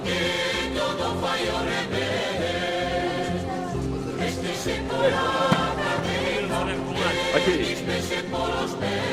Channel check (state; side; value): identical; both; correlation 1.00